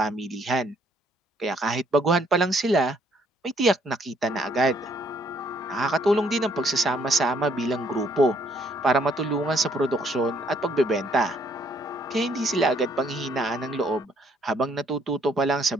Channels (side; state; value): both; normal; correlation 0.66